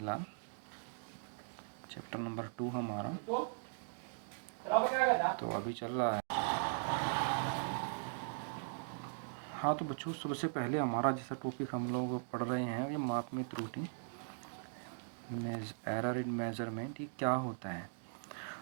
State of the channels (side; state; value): left; silent; digital silence